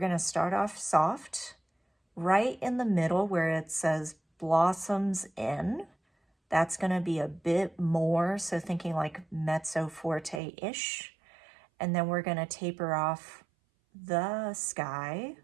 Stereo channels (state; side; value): drops out; left; at 10.4 s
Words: to start off soft, right in the middle where it says blossoms in. That's going to be a bit more, so thinking like mezzo forte-ish. And then we're going to taper off. The sky